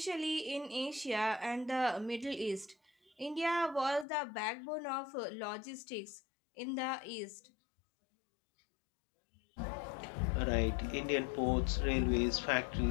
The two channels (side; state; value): right; drops out; at 4.0 s